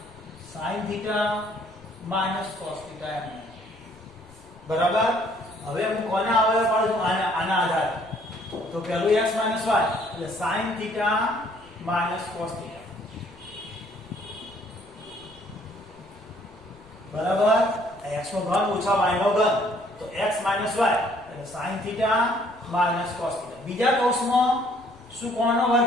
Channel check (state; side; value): noise; left; rumble, 26 dB below the sound